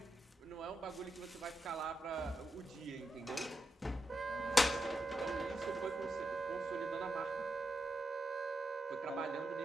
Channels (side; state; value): both; normal; correlation 0.87